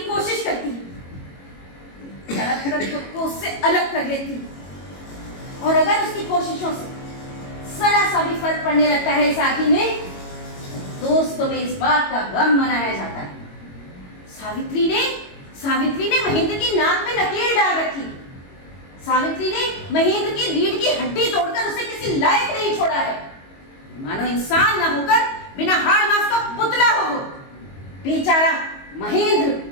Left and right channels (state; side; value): late; right; 22 ms